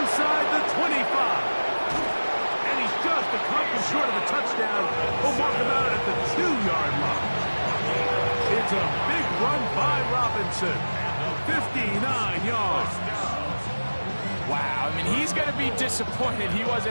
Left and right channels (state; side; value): inverted; both; correlation -1.00